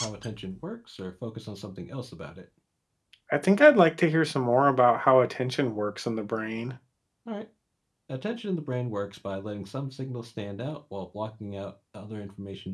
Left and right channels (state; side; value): identical; both; correlation 1.00